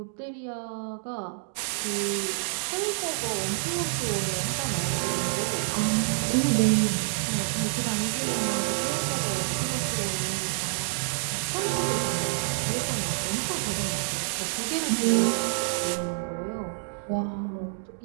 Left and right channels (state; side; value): silent; left; digital silence